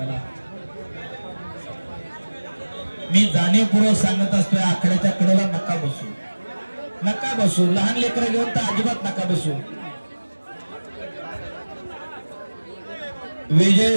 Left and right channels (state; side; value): inverted; both; correlation -1.00